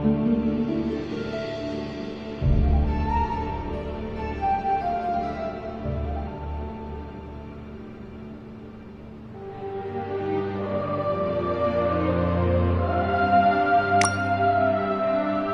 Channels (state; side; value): identical; both; correlation 1.00